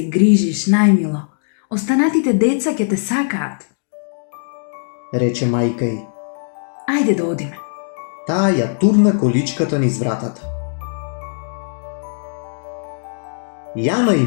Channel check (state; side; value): silent; right; digital silence